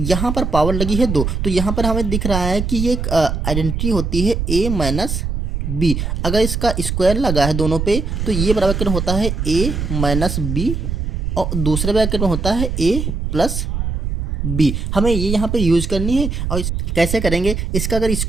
यहाँ पर पावर लगी है 2, तो यहाँ पर हमें दिख रहा है कि ये एक आइडेंटिटी होती है ए माइनस बी। अगर इसका स्क्वायर लगा है दोनों पे तो ये ब्रैकेट में होता है ए माइनस बी और दूसरे ब्रैकेट में होता है ए प्लस बी। हमें ये यहाँ पे यूज करनी है और कैसे करेंगे, इसका अगर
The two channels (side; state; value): right; noise; rumble, 2 dB below the sound